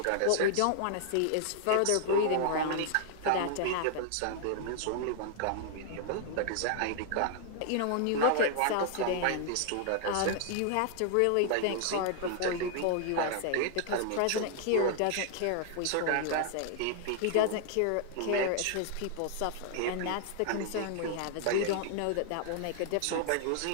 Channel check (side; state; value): both; different; correlation 0.00